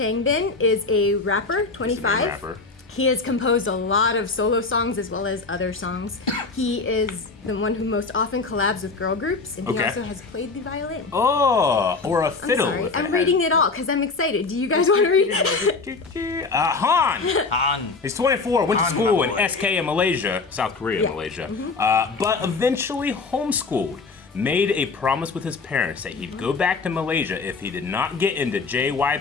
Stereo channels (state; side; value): quieter; right; 4.1 dB